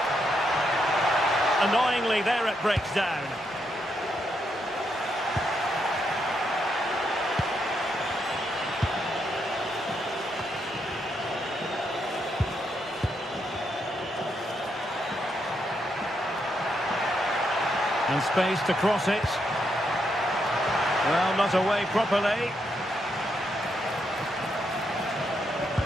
Annoyingly, there it breaks down. And space to cross it. Well, not away properly.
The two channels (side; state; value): both; normal; correlation 0.79